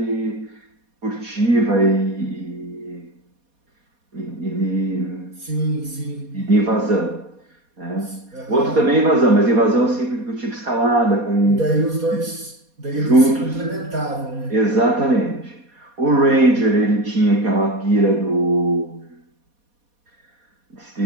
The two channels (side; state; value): left; late; 4.2 ms